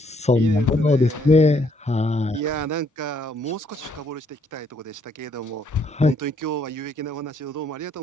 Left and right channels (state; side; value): normal; both; correlation 0.69